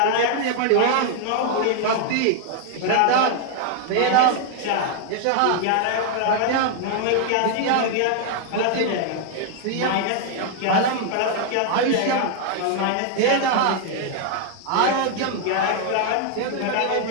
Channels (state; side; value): different; both; correlation 0.00